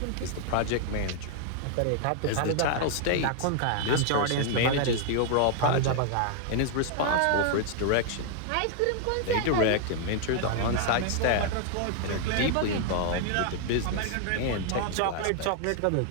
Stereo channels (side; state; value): both; different; correlation 0.00